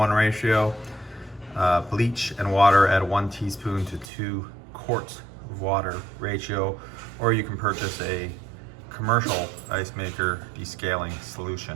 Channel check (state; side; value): drops out; left; at 4.1 s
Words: ratio, bleach and water at a 1 teaspoon to 2 quarts of water ratio, or you can purchase a commercial ice maker descaling